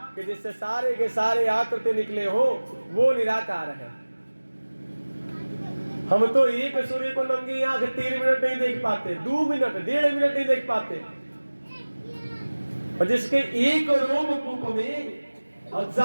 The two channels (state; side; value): inverted; both; correlation -1.00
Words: कि जिससे सारे के सारे आकृति निकले हो वो निराकार है। हम तो एक सूर्य को नंगी आंख 3 मिनट नहीं देख पाते, 2 मिनट 1.5 मिनट नहीं देख पाते, और जिसके एक रोमकूप में